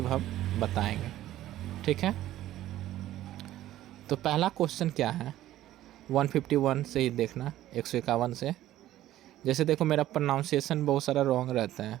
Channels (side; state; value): left; quieter; 13.9 dB